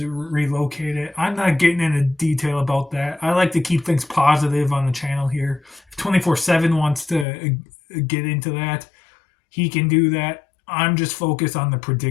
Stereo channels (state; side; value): drops out; right; at 7.2 s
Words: relocated. I'm not getting into detail about that. I like to keep things positive on the channel here. If 24/7 wants to get into that, he can do that. I'm just focused on the